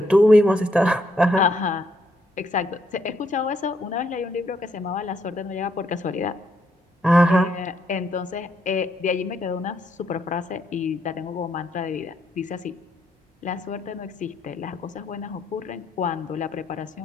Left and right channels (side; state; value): both; normal; correlation 0.74